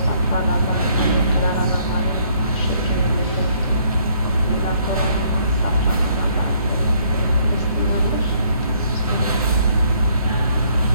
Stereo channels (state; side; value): inverted; both; correlation -0.66